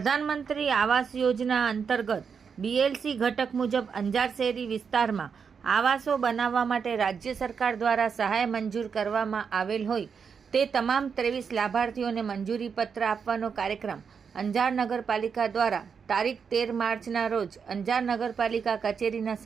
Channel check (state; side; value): quieter; left; 6.3 dB